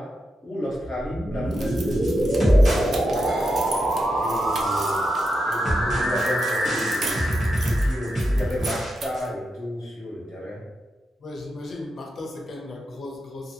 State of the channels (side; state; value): both; normal; correlation 0.86